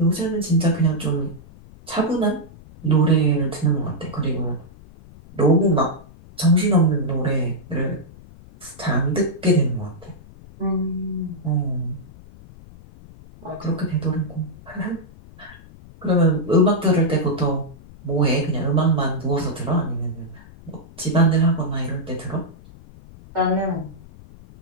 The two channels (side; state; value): left; noise; rumble, 21 dB below the sound